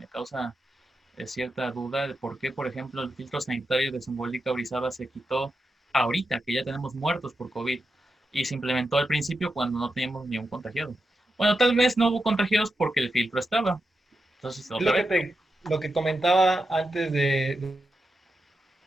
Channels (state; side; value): normal; both; correlation 0.88